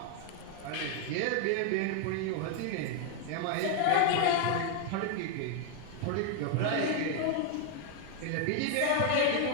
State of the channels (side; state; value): both; different; correlation 0.01